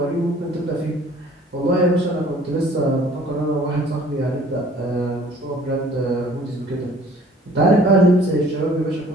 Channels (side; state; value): both; normal; correlation 0.53